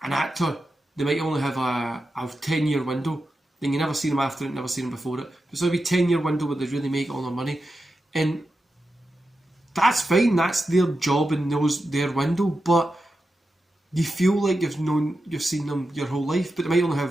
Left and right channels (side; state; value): both; normal; correlation 0.90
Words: an actor, they might only have a 10-year window. Then you never see them after it, never see them before it. So it'll be a 10-year window where they really make all their money. And that's fine, that's their job and their window, but you feel like you've seen them your whole life, but they might only